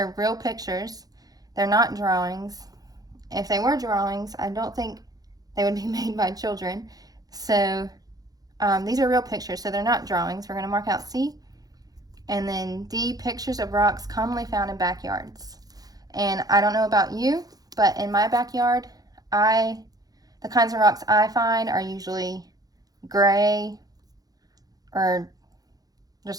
real pictures. They're not drawings. If they were drawings, I don't think they would be made by children. So these are real pictures, so they're not drawings. We're going to mark out C. And then D, pictures of rocks commonly found in backyards. And I don't know about you, but in my backyard, the kinds of rocks I find are usually gray or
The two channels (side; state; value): left; late; 0.18 ms